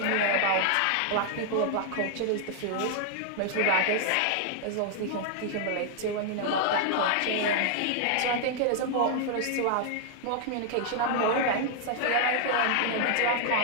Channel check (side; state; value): both; different; correlation 0.00